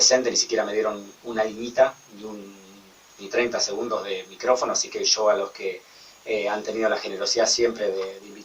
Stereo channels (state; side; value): identical; both; correlation 1.00